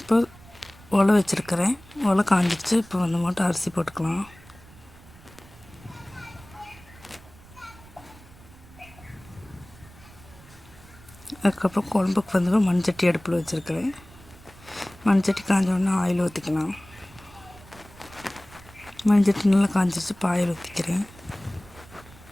இப்போ உலை வச்சுருக்கிறேன். உலை காஞ்சிடுச்சு. இப்போ வந்து மட்டும் அரிசி போட்டுக்கலாம். அதுக்கப்புறம் குழம்புக்கு வந்து மண்சட்டி அடுப்பில் வச்சுருக்கிறேன். மண்சட்டி காஞ்சோடனே ஆயில் ஊற்றிக்கலாம். மண்சட்டி நல்லா காஞ்சிச்சு. இப்போ ஆயில் ஊற்றிக்கிறேன்.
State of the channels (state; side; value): noise; right; rumble, 22 dB below the sound